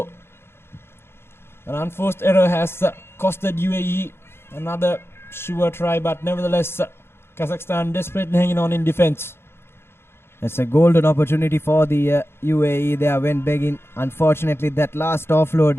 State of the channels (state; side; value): late; right; 0.12 ms